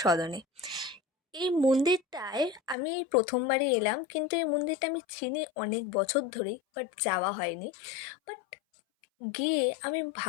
এই মন্দিরটায় আমি প্রথমবারই এলাম, কিন্তু এই মন্দিরটা আমি চিনি অনেক বছর ধরেই, বাট যাওয়া হয়নি। বাট গিয়ে আমি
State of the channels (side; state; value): right; drops out; at 2.8 s